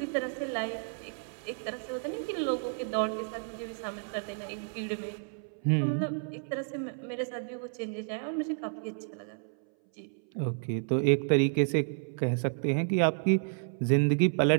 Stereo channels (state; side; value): silent; left; 57 dB below the other